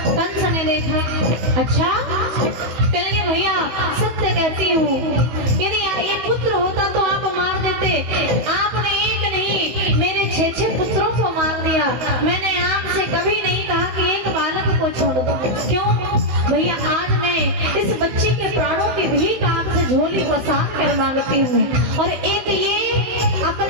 कंस ने देखा, अच्छा कहेंगे भैया सत्य कहती हूँ, यदि ये पुत्र होता तो आप मार देते, आपने एक नहीं मेरे 6 पुत्रों को मार दिया। मैंने आपसे कभी नहीं कहा कि एक बालक को छोड़ दो। क्यों भैया? आज मैं इस बच्चे के प्राणों की भीख आपसे झोली पसार कर मांगती हूँ, और एक ये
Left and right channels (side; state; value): left; late; 15 ms